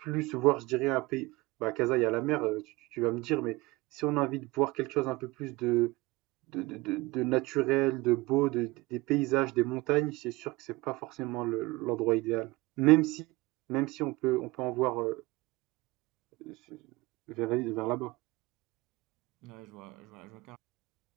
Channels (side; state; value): left; quieter; 21.6 dB